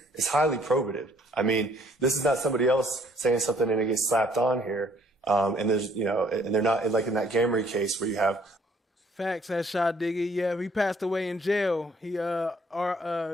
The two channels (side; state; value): both; normal; correlation 0.62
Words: highly probative. I mean, this is not somebody else saying something and it gets slapped on here. And there's, and they're not like in that Gamry case where you have. Facts, that shot Diggy. Yeah, he passed away in jail. He,